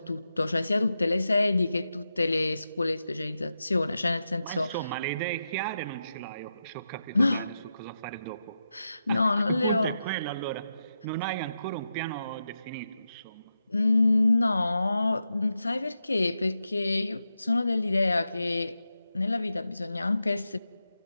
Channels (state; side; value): inverted; both; correlation -0.88